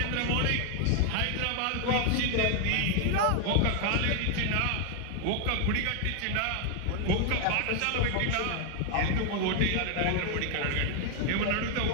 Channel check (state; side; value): different; both; correlation 0.00